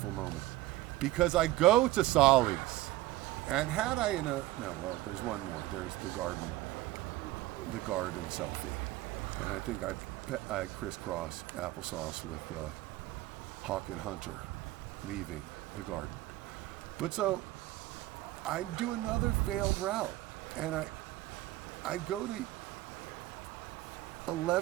moment, because I go to Solly's, and had I there's one more. There's the garden selfie, and I think I crisscross applesauce with Hawk and Hunter leaving the garden. But so I do another failed route, and I go to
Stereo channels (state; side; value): quieter; left; 16.6 dB